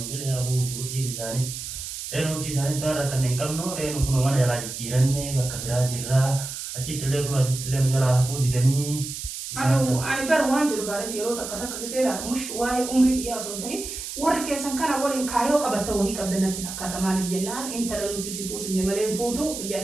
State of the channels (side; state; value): right; noise; hiss, 7 dB below the sound